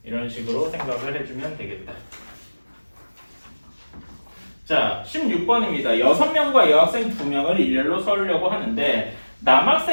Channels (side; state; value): both; inverted; correlation -1.00